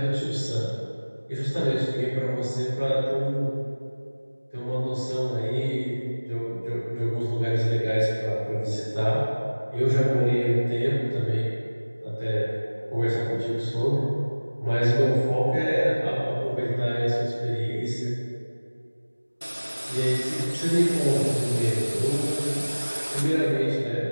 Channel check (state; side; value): inverted; both; correlation -1.00